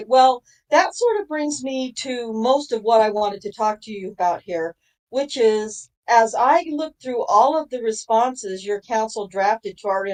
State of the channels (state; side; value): identical; both; correlation 1.00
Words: well, that sort of brings me to most of what I wanted to talk to you about here, which is as I look through all of the responses your counsel drafted to our